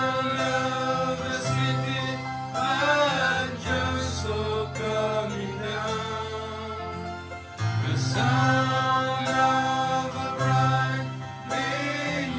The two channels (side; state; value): both; identical; correlation 1.00